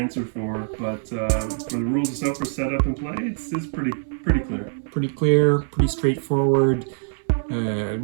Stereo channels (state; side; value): silent; left; 63 dB below the other